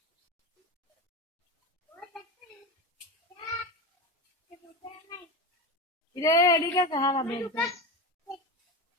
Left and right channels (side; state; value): both; normal; correlation 0.22